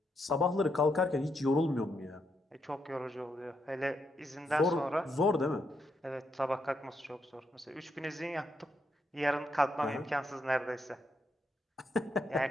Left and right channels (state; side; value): normal; both; correlation 0.79